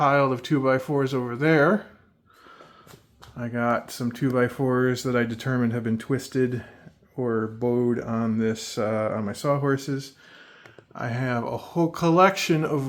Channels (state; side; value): identical; both; correlation 1.00